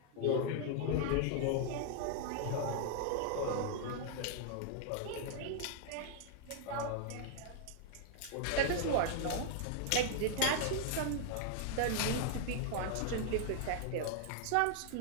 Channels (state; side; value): different; both; correlation 0.00